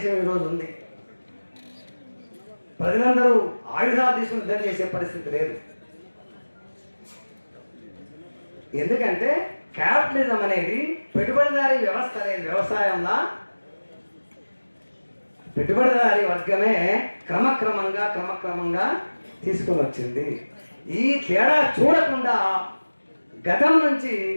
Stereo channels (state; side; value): inverted; both; correlation -1.00